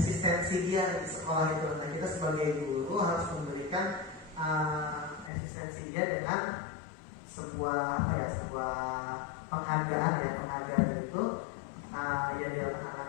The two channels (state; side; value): drops out; right; at 5.3 s